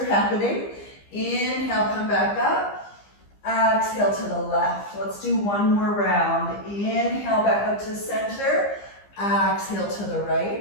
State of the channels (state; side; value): late; right; 15 ms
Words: happening. Inhale, come back up. Exhale to the left. Let's do one more round. Inhale, back up to center. Exhale to the